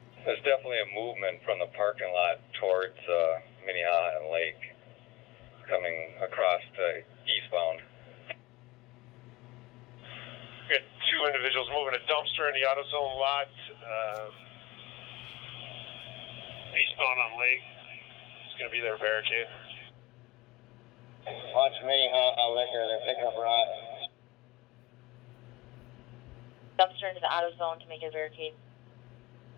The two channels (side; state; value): right; quieter; 20.6 dB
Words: There's definitely a movement from the parking lot towards Minneapolis and Lake, coming across to eastbound. We got two individuals moving a dumpster in the AutoZone lot, eastbound on Lake. It's going to be their barricade. Watch Minneapolis liquor, they're picking up rocks. Dumpster into the AutoZone to make a barricade.